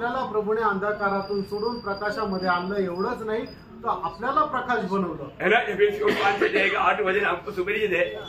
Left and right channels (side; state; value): both; identical; correlation 1.00